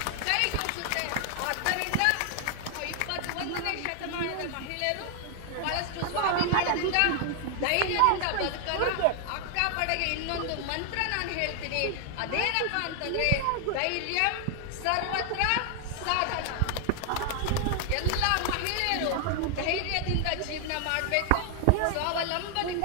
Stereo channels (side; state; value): both; different; correlation 0.00